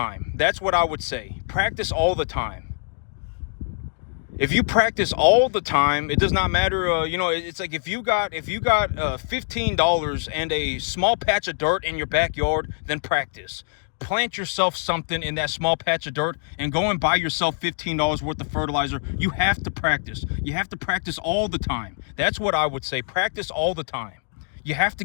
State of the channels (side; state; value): right; silent; digital silence